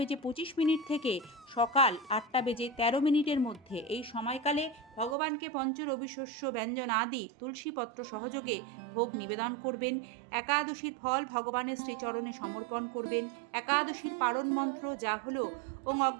থেকে সকাল 8:13 মধ্যে। এই সময়কালে ভগবানকে পঞ্চরবি শস্য ব্যঞ্জন আদি তুলসীপত্র সহযোগে ভোগ নিবেদন করবেন। একাদশীর ফল ভগবানের শ্রীচরণে সমর্পণ করবেন। একাদশীর পালন মন্ত্র যা হলো, ওং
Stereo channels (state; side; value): drops out; left; at 5.2 s